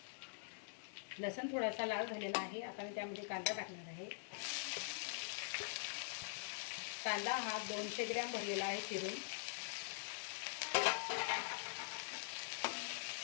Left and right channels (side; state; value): right; silent; digital silence